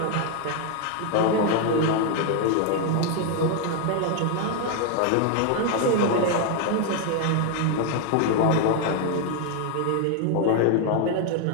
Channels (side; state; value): both; different; correlation 0.01